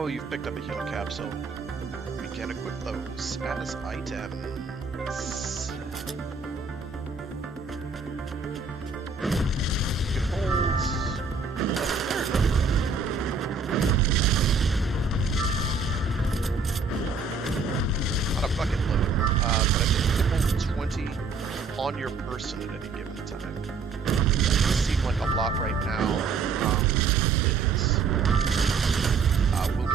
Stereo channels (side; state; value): left; quieter; 4.7 dB